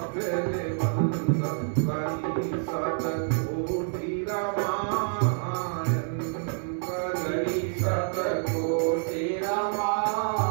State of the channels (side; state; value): left; silent; 58 dB below the other